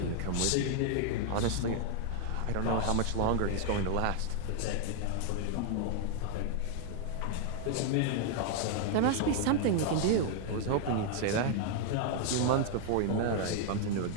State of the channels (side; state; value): both; different; correlation 0.00